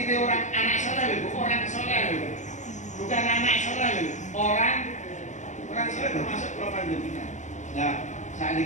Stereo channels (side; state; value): right; late; 0.35 ms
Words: orang anak soleh, orang soleh. Bukan anak soleh, orang soleh termasuk propan jenengan. Nah, saat